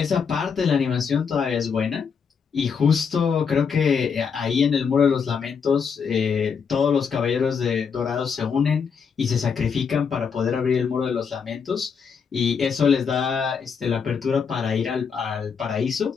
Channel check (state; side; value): quieter; right; 6.3 dB